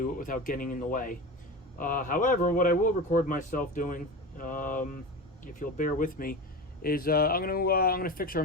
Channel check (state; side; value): normal; both; correlation 0.27